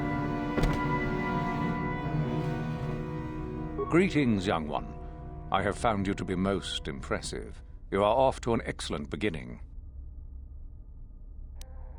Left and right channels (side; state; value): both; identical; correlation 1.00